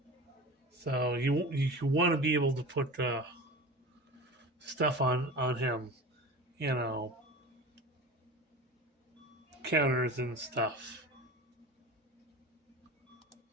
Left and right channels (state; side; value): normal; both; correlation 0.33